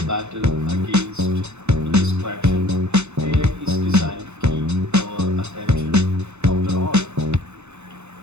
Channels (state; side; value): late; left; 0.82 ms